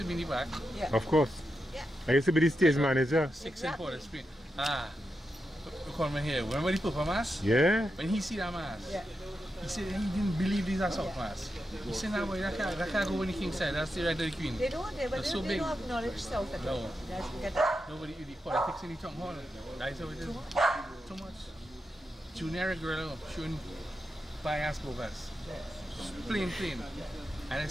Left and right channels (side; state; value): both; normal; correlation 0.87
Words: be in the back. Yeah. Of course. Yeah. I used to be the stage manager. 6 in Port of Spain. We come here. Remember the Papa Mass? Yeah. When he see that mass, Yeah. he said he didn't believe these are South Mass. He said, "No, boy, that can't go on the King side. That's the right of the Queen." They don't, they That's so they big. don't acknowledge South at all. No. Guys, get that? Nobody do the politics in the town hall. That's how it is. Too much. Junior girl showing bias bogus. Plain. And